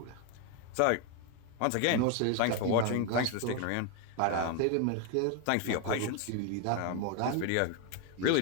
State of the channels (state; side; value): different; both; correlation 0.01